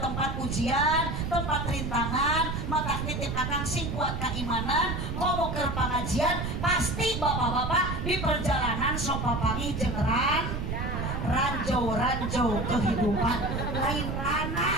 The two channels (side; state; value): right; noise; rumble, 3 dB below the sound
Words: tempat ujian, tempat rintangan. Maka nitip akang sing kuat keimanan, komo keur pengajian, pasti bapak-bapak di perjalanan sok papangi jeung ranjau kehidupan lain rana.